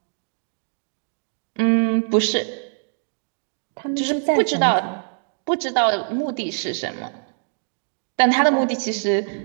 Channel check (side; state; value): left; silent; digital silence